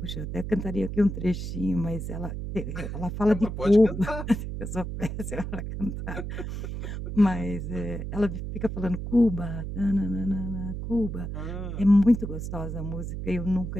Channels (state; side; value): noise; right; hum, 5 dB below the sound